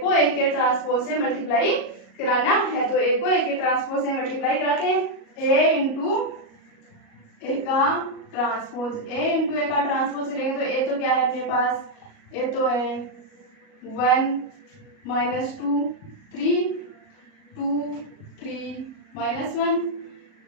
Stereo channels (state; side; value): late; right; 37 ms